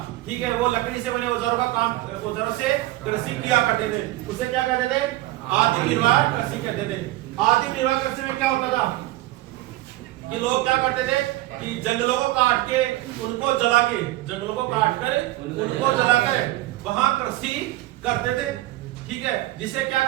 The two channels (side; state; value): left; quieter; 17.2 dB